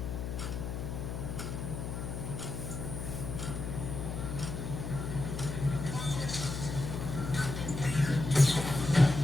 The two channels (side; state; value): left; noise; hum, 5 dB below the sound